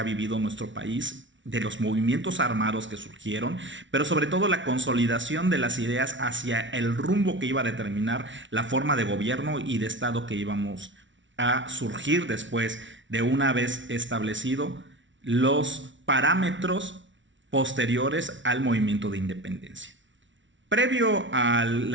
vivido nuestro país, de los movimientos armados que surgieron, pero sobre todo la consolidación de las ideas hacia el rumbo que iba a determinar la forma de gobierno y de Estado que íbamos a surgir después de una vez establecido los parámetros posteriores al movimiento de independencia. Previo a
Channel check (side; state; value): left; late; 0.55 ms